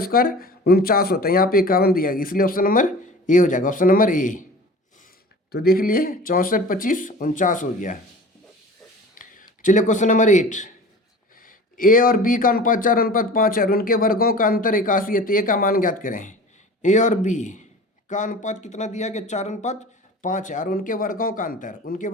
स्क्वायर 49 होता है। यहाँ पे 51 दिया गया, इसलिए ऑप्शन नंबर ए हो जाएगा। ऑप्शन नंबर ए, तो देख लिए 64 25 49 हो गया। चलिए क्वेश्चन नंबर 8, ए और बी का अनुपात 4:5 है और उनके वर्गों का अंतर 81 है, तो ए का मान ज्ञात करें। ए और बी का अनुपात कितना दिया गया, 4:5 है और उनके वर्गों का अंतर, उनके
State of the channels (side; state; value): both; normal; correlation 0.39